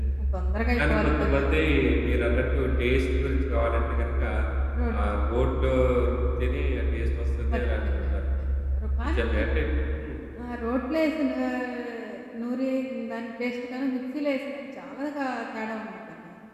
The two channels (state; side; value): identical; both; correlation 1.00